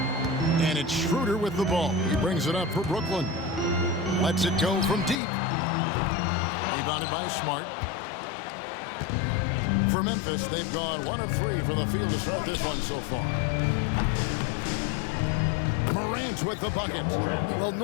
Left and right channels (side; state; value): right; drops out; at 5.2 s